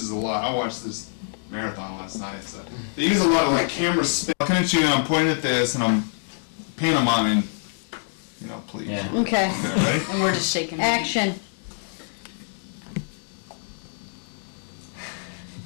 a lot. I watched this marathon last night, so they use a lot of like camera spin. I'm looking at you and I'm pointing at this and I'm pantomiming. You know, please. Yeah. Okay. Ready? And we're just shaking. Action.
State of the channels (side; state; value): right; silent; digital silence